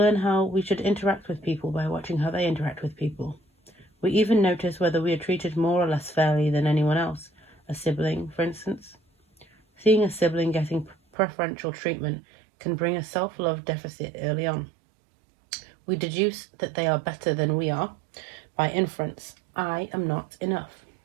how we should interact with people by watching how they interact with people. We even notice whether we are treated more or less fairly than anyone else. A sibling, for instance. Seeing a sibling getting preferential treatment can bring a self-love deficit early on. We deduce that they are better than we are. By inference, I am not enough.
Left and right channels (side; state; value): left; drops out; at 11.0 s